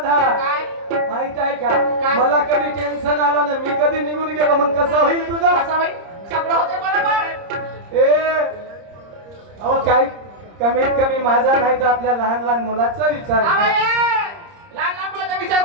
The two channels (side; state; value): left; late; 30 ms